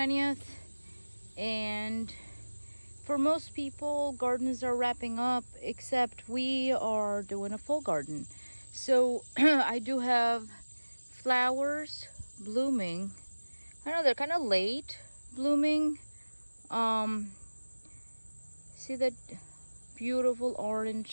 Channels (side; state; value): both; inverted; correlation -1.00